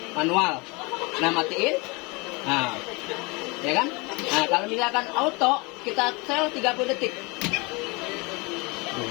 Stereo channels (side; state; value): right; quieter; 27.6 dB